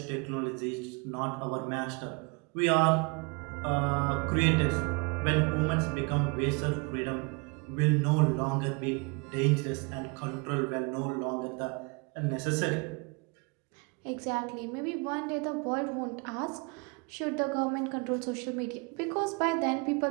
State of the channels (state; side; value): quieter; left; 30.7 dB